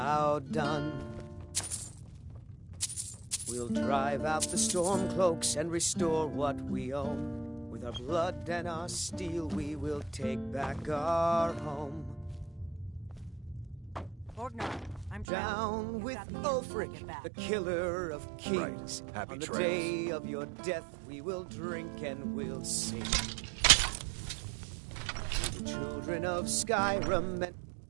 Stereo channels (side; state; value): left; drops out; at 15.2 s